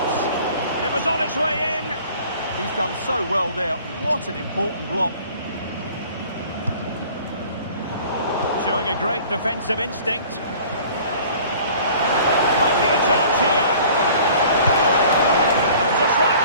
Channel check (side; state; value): both; inverted; correlation -0.49